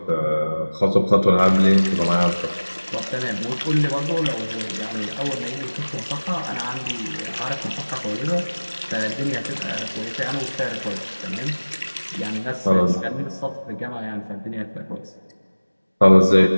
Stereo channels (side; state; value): both; inverted; correlation -1.00